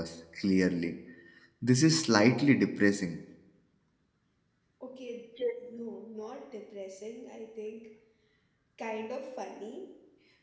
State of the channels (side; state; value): both; identical; correlation 1.00